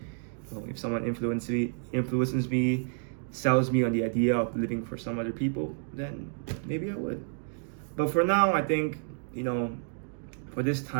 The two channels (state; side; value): silent; left; digital silence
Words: if someone influences me, sells me on the idea of living for some other people, then maybe I would. But for now, I think, for this